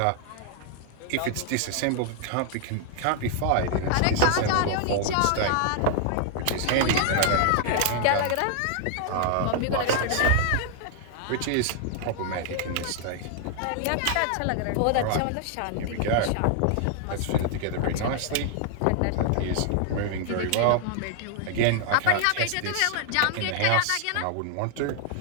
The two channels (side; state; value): both; different; correlation 0.00